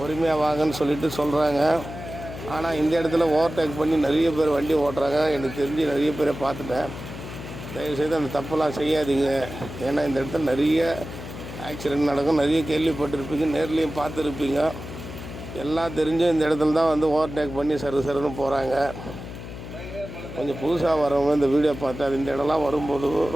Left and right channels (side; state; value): left; noise; hum, 11 dB below the sound